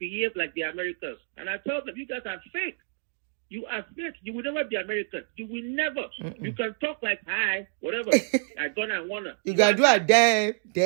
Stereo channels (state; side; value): silent; left; digital silence